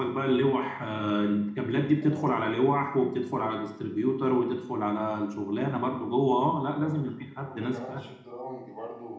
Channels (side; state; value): both; identical; correlation 1.00